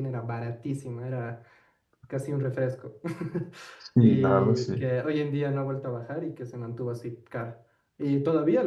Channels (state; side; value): identical; both; correlation 1.00